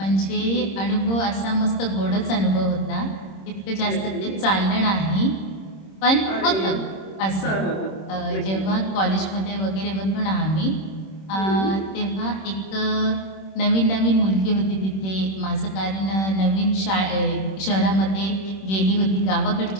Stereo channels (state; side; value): late; right; 26 ms